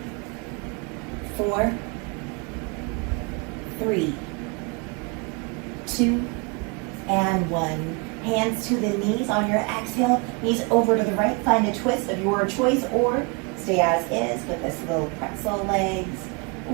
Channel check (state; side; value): quieter; left; 30.7 dB